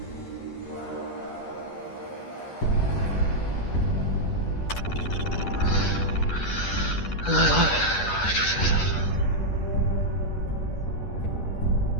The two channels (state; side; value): late; right; 10 ms